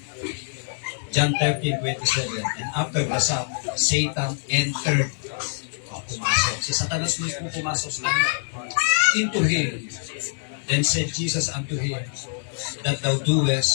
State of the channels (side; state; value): right; silent; 62 dB below the other